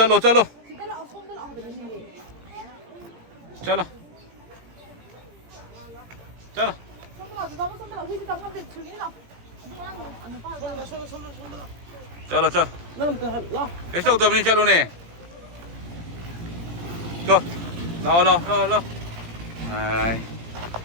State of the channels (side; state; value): left; late; 17 ms